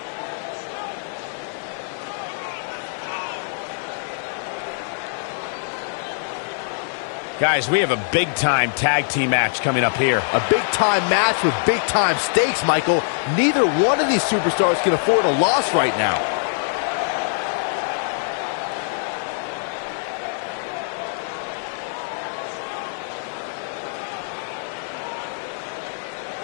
Guys, we have a big-time tag team match coming up here. A big-time match with big-time stakes, Michael. Neither one of these superstars can afford a loss right now.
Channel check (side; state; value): right; silent; digital silence